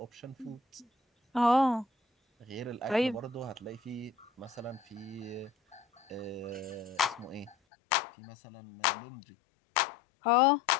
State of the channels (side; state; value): right; drops out; at 7.6 s